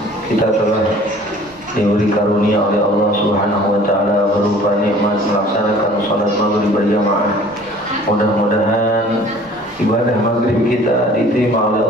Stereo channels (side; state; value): both; normal; correlation 0.50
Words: kita telah diberi karunia oleh Allah Subhanahu wa taala berupa nikmat melaksanakan salat maghrib berjamaah. Mudah-mudahan ibadah maghrib kita diterima oleh